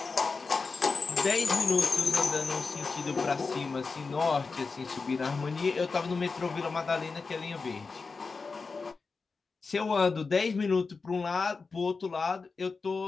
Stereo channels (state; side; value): quieter; right; 4.5 dB